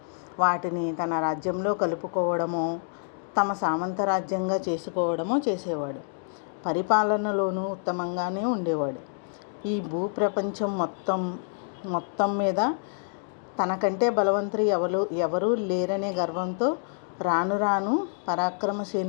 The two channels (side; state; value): right; silent; digital silence